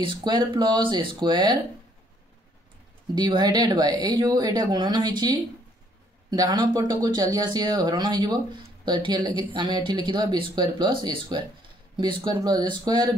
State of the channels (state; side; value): normal; both; correlation 0.65